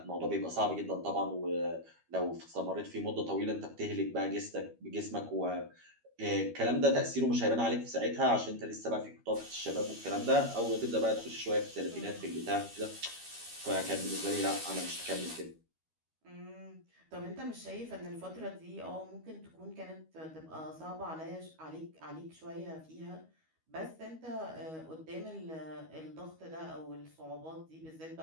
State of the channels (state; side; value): late; left; 13 ms